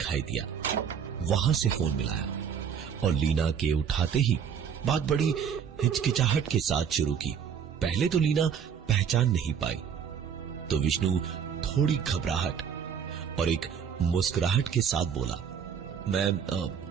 दिया, वहां से फोन मिलाया और लीना के उठाते ही बात बड़ी हिचकिचाहट के साथ शुरू की। पहले तो लीना पहचान नहीं पाई, तो विष्णु थोड़ी घबराहट और एक मुस्कुराहट के साथ बोला, मैं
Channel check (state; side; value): quieter; left; 7.6 dB